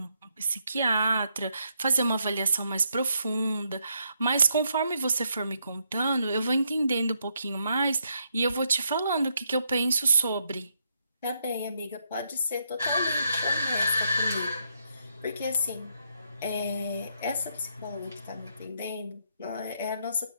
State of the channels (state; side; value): inverted; both; correlation -0.77